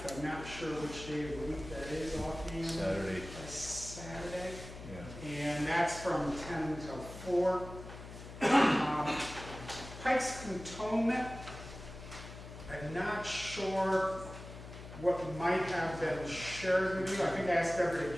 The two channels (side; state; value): left; noise; hum, 13 dB below the sound